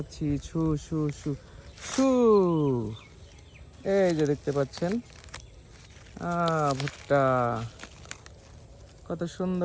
ছু ছু ছু ছু। এই যে দেখতে পাচ্ছেন ভুট্টা কত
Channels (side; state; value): both; identical; correlation 1.00